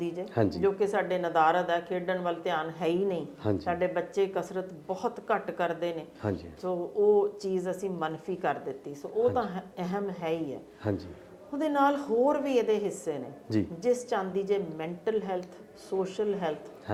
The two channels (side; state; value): both; identical; correlation 1.00